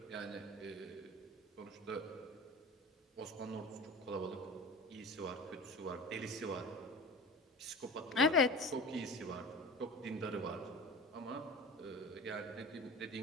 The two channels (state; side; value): normal; both; correlation 0.35